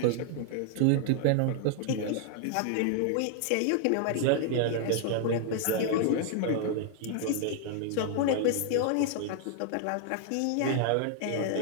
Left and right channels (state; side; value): different; both; correlation 0.00